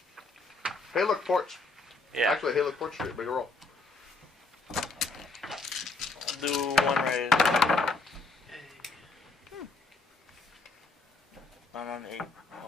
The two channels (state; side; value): quieter; right; 3.5 dB